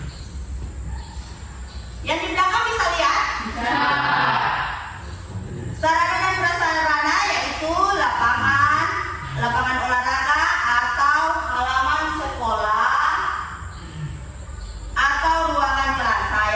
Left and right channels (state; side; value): identical; both; correlation 1.00